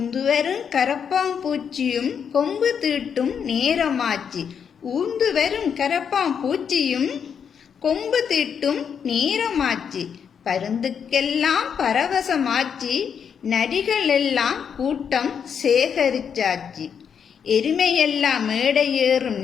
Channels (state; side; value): quieter; right; 7.3 dB